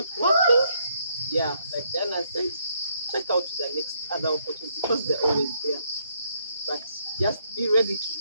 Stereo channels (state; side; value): inverted; both; correlation -0.73